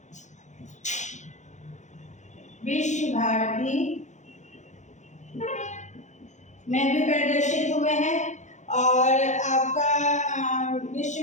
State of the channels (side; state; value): right; late; 0.35 ms